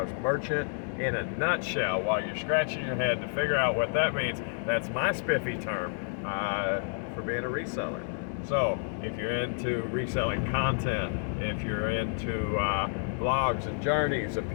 merchant in a nutshell. While you're scratching your head to figure out what that means, that's my spiffy term for being a reseller. So if you're into reselling content, if you're into blogs and journeys of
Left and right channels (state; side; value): silent; right; digital silence